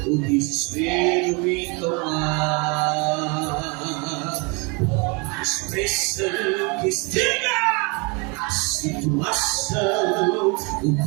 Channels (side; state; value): left; quieter; 30.6 dB